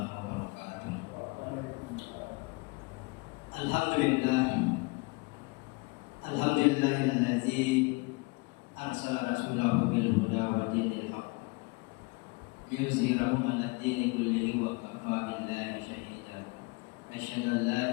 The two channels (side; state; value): right; quieter; 27.1 dB